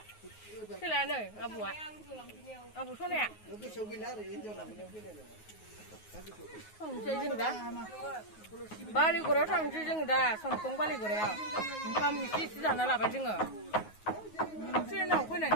सोलानो आबौआ आबौ सनाया थांसै जों दा बालिगुरायाव थांसै जों दा समखं बालिगुरायाव ओंखाम एसे एसे जाना लाबाय जोङो ट्रेनाव फैनानै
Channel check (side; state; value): right; late; 9.4 ms